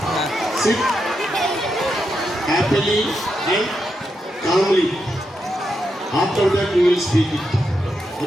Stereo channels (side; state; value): both; normal; correlation 0.84